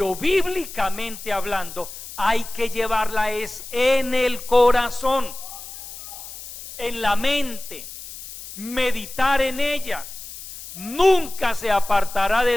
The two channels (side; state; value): left; noise; hiss, 13 dB below the sound